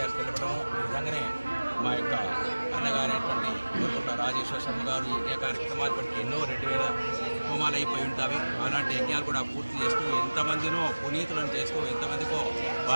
తెలపడము. ఈ విధంగానే మా యొక్క అన్నగారైనటువంటి కోరుకుంట రాజేశ్వర శర్మ గారు యజ్ఞ కార్యక్రమాలు బట్టి ఎన్నో 2000 హోమాలు అయిపోయి ఉంటాయి. అలాంటి యజ్ఞాలు కూడా పూర్తి చేస్తూ ఎంతమందినో పునీతులను చేస్తూ ఎంతమందికో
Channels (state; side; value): inverted; both; correlation -1.00